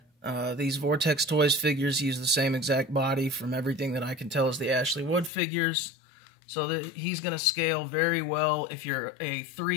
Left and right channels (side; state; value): right; drops out; at 5.3 s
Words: these Vortex Toys figures use the same exact body from everything that I can tell is the Ashley Wood figures. So that he's going to scale very well. If you're a